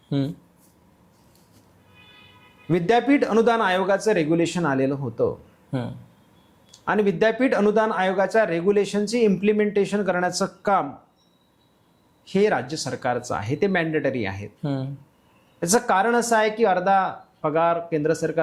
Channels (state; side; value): identical; both; correlation 1.00